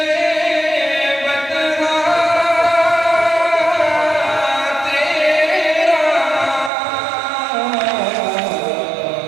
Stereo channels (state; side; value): drops out; left; at 6.7 s